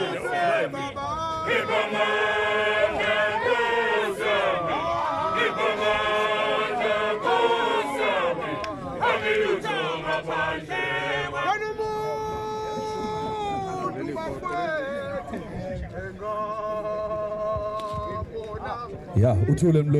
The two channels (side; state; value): both; identical; correlation 1.00